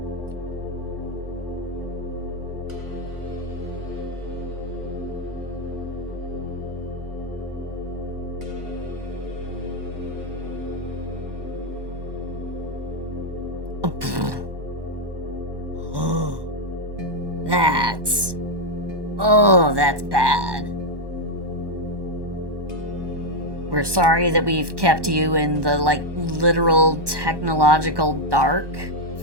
That's bad. We're sorry that we've kept you in the, like, literal technological dark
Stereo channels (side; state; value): left; late; 1.1 ms